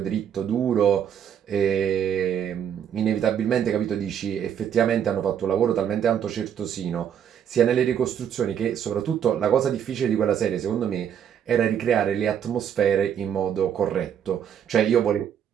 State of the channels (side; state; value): left; quieter; 8.8 dB